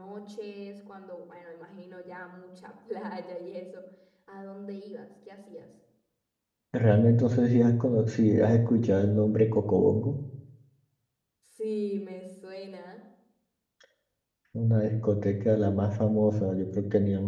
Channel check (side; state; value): both; identical; correlation 1.00